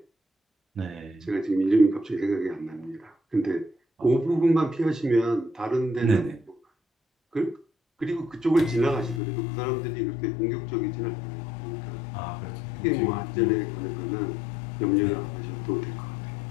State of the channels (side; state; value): right; drops out; at 9.2 s